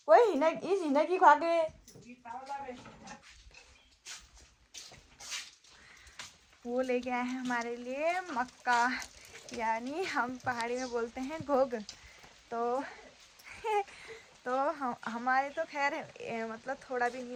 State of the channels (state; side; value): identical; both; correlation 1.00